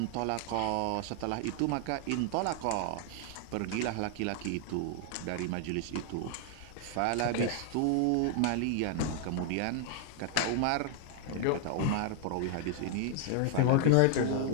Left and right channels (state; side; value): different; both; correlation 0.00